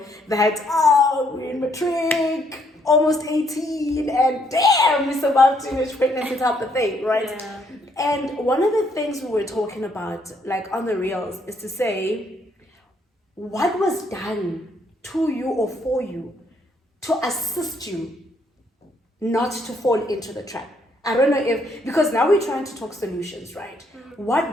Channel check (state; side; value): normal; both; correlation 0.70